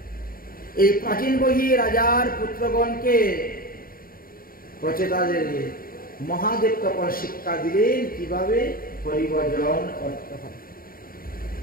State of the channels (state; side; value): late; right; 0.42 ms